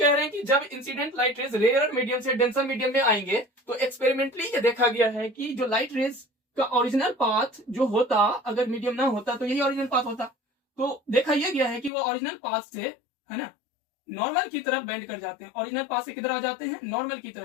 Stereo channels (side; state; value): right; drops out; at 11.9 s